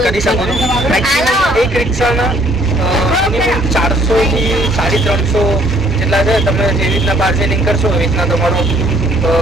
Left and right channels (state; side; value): normal; both; correlation 0.62